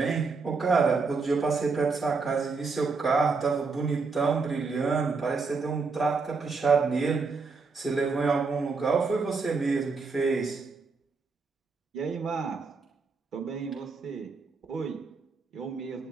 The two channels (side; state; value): left; quieter; 4.5 dB